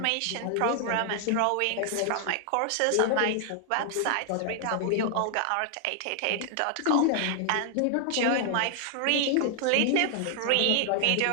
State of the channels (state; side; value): different; both; correlation 0.00